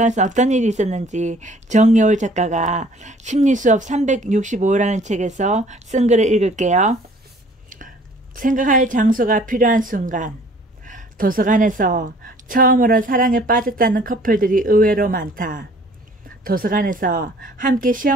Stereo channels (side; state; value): both; normal; correlation 0.54